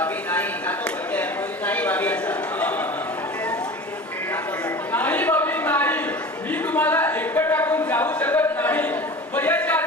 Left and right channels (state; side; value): normal; both; correlation 0.36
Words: नाही जातो पहिले नाही भाभी असा नाही बाबी नाही, मी तुम्हाला एकटं टाकून जाऊ शकत नाही. वयाची